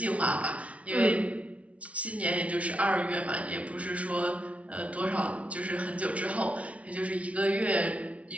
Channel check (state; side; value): late; left; 0.065 ms